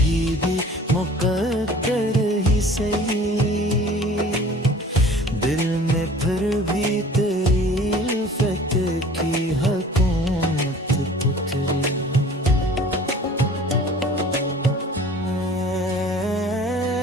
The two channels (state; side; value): normal; both; correlation 0.47